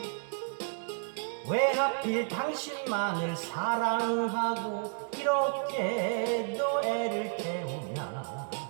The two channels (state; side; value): silent; left; 56 dB below the other